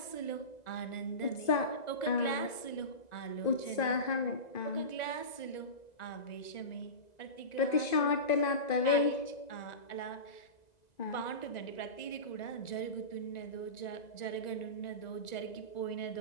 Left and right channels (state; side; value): late; right; 1.9 ms